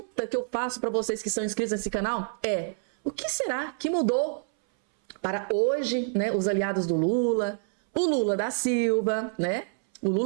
que eu faço para vocês que são inscritos nesse canal é: o que será que mudou para hoje, né, os aliados do Lula, o Lula da Silva, né, O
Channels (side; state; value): left; silent; 60 dB below the other